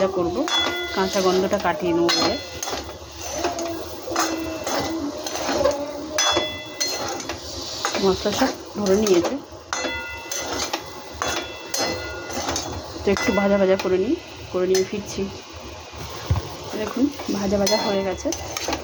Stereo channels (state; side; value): identical; both; correlation 1.00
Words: করবো, কাঁচা গন্ধটা কাটিয়ে নেবো বলে। মশলা সব ধরে নিয়েছে, তো একটু ভাজা ভাজা করে নিয়ে ফিরছি। দেখুন ভাজা ভাজা হয়ে গেছে।